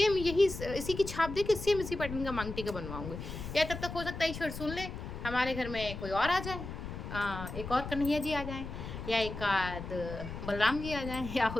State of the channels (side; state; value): left; noise; rumble, 8 dB below the sound